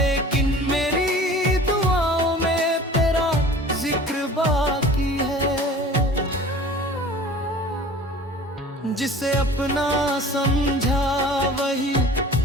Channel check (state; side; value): normal; both; correlation 0.43